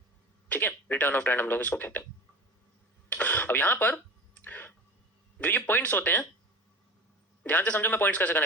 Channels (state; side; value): normal; both; correlation 0.34